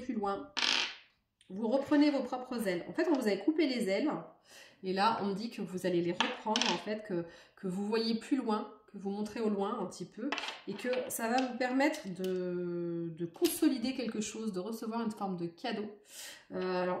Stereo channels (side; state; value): both; identical; correlation 1.00